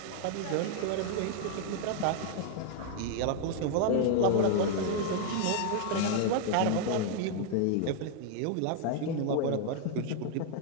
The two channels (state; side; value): different; both; correlation 0.00